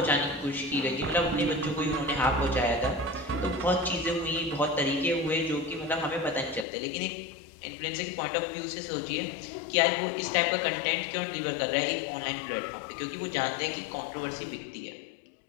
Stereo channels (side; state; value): right; drops out; at 6.7 s